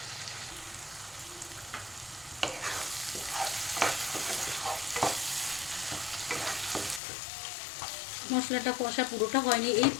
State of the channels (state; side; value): drops out; right; at 7.0 s